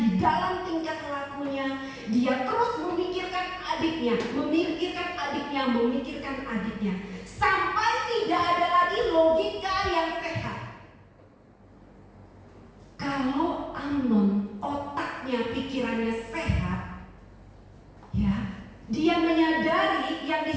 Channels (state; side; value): identical; both; correlation 1.00